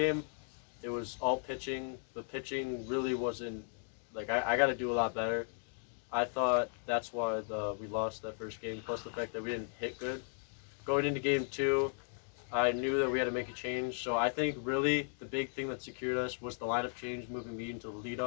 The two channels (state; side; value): silent; right; 54 dB below the other